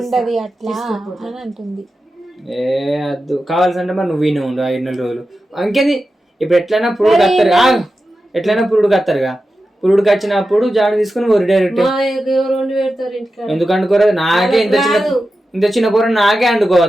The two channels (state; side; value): normal; both; correlation 0.91